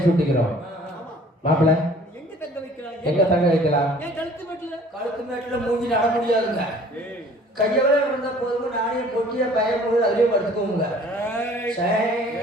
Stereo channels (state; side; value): normal; both; correlation 0.52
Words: சொல்லுகிறோம். மாப்பிள்ள எங்க தங்க வைக்கிறாங்க? எங்க தங்க வைக்கலாம்? ஏன் கழுத்து மேட்டுல மூஞ்சி நட முடியாதுங்க. கையவே இருந்தா போதுங்க. நானே பொட்டிய பயம் போது அதுலயே படுத்துக்கோங்க.